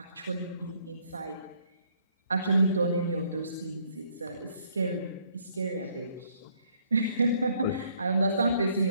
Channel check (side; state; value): both; inverted; correlation -0.66